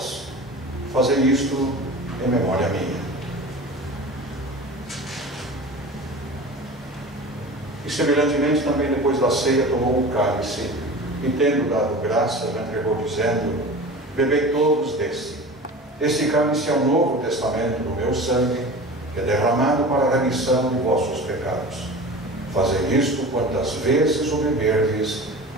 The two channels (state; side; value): normal; both; correlation 0.35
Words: Fazei isto em memória minha. E semelhantemente também depois da ceia tomou o cálice e, tendo dado graças, entregou, dizendo: bebei todos desse. Este cálice é o novo testamento do meu sangue, que é derramado para a remissão de vossos pecados. Fazei isto quantas vezes o beberdes,